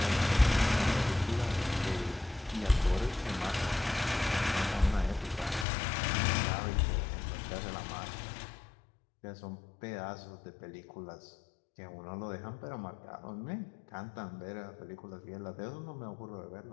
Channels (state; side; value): drops out; right; at 5.7 s